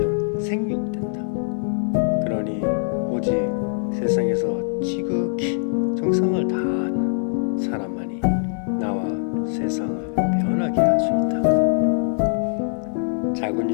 생육된다. 그러니 오직 세상에서 지극히 정성을 다하는 사람만이 나와 세상을 변하게 할 수 있다. 작은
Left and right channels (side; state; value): right; silent; 60 dB below the other